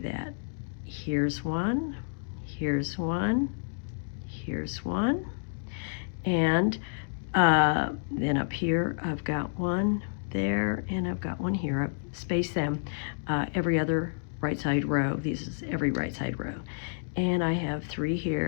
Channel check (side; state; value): right; silent; digital silence